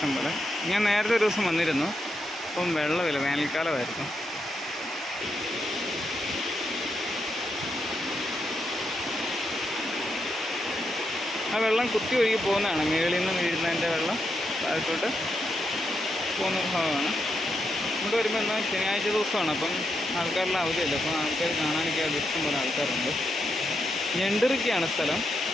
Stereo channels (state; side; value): normal; both; correlation 0.83